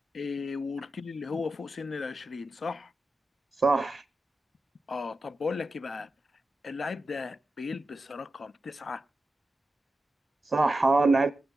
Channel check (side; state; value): both; normal; correlation 0.91